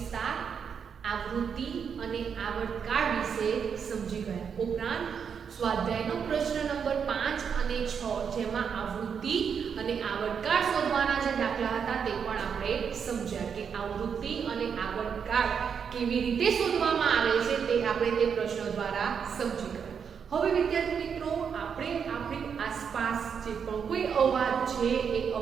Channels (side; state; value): left; quieter; 6.9 dB